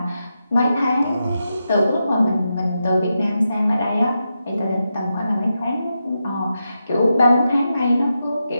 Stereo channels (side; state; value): both; inverted; correlation -0.87